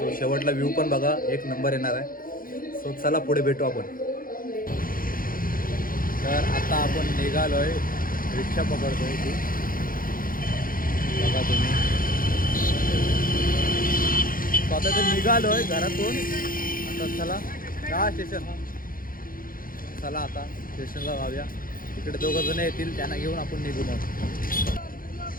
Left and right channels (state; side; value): late; right; 0.41 ms